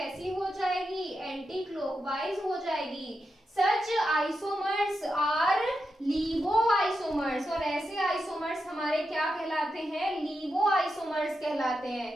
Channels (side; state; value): both; normal; correlation 0.87